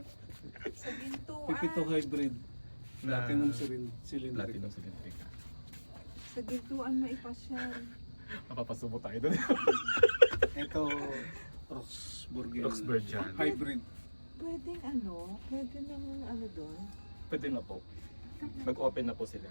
Sa Gintuan. Pipito hybrid. Na- Platinum cylinder. Platinum Cylindrica. Sa Gintuan maipasyal. Mapapasubo tayo doon. Ito, Roxburghian. Roxburghian. Hybrid. Pwede namang ano doon. Pwede na po. Nag-open na po sila.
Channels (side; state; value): both; inverted; correlation -1.00